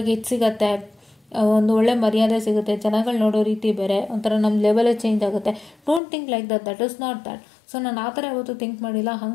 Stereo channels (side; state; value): right; drops out; at 6.0 s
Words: ಇದು ಸಿಗತ್ತೆ, ಒಂದು ಒಳ್ಳೆ ಮರ್ಯಾದೆ ಸಿಗುತ್ತೆ, ಜನಗಳು ನೋಡೋ ರೀತಿ ಬೇರೆ, ಒಂಥರ ನಮ್ಮ ಲೆವೆಲೇ ಚೇಂಜ್ ಆಗುತ್ತೆ. Don't think like that is not that. So ನಾನು ಆ ಥರ ಯಾವತ್ತೂ ಥಿಂಕ್ ಮಾಡಿಲ್ಲ.